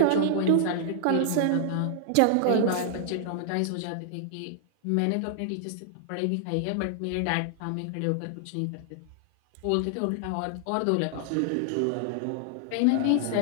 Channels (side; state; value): both; different; correlation -0.01